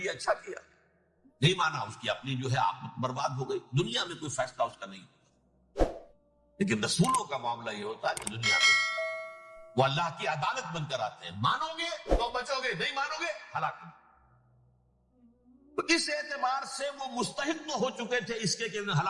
اچھا کیا، نہیں مانا اس کی اپنی جو ہے آپ برباد ہو گئی، دنیا میں کوئی فیصلہ اس کا نہیں ہوتا۔ لیکن رسولوں کا معاملہ یہ ہوتا ہے کہ دنیا میں وہ اللہ کی عدالت بن کر آتے ہیں، مانو گے تو بچو گے، نہیں مانو گے ہلاک۔ تو اس اعتبار سے وہ مستحق تو ہو چکے تھے اس کے کہ انہیں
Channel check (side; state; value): both; identical; correlation 1.00